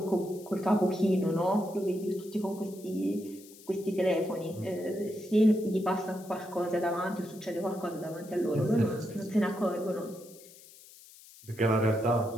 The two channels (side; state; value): left; noise; hiss, 21 dB below the sound